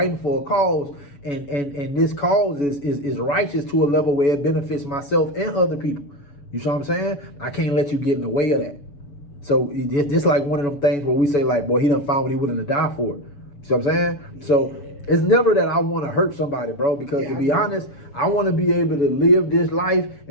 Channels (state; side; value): late; right; 7.1 ms